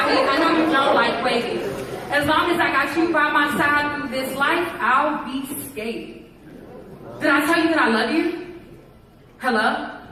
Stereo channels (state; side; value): identical; both; correlation 1.00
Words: mean, I know you don't like waiting. As long as I got you by my side through this life, I'll be scared. Did I tell you that I love you? Hello?